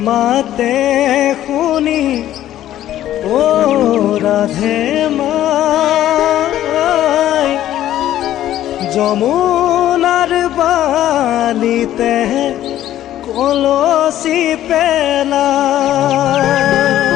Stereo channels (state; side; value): quieter; right; 12.7 dB